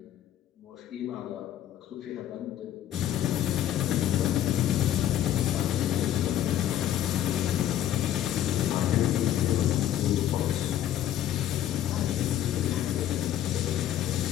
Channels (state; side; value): quieter; right; 11.5 dB